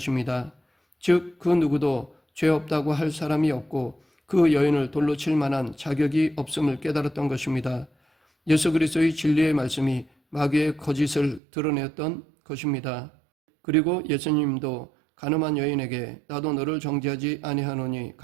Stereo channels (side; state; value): left; drops out; at 11.4 s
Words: 즉, 그 누구도 죄 없다고 할 사람이 없고 그 여인을 돌로 칠 만한 자격이 없음을 깨달았던 것입니다. 예수 그리스도의 진리의 말씀이 마귀의 거짓을 드러냈던 것입니다. 그리고 예수님도 간음한 여인에게 나도 너를 정죄하지 아니하노니